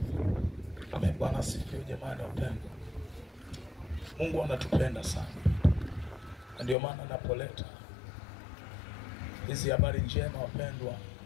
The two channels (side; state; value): right; drops out; at 6.8 s